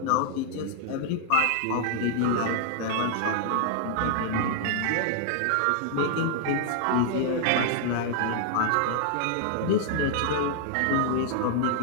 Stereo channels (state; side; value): different; both; correlation 0.00